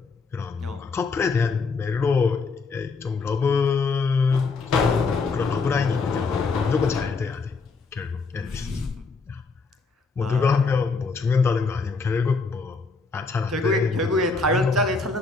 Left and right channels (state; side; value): quieter; right; 4.3 dB